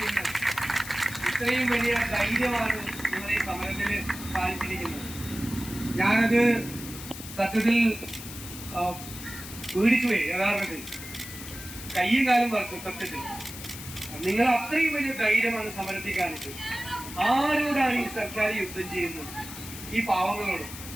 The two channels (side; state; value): left; noise; hiss, 12 dB below the sound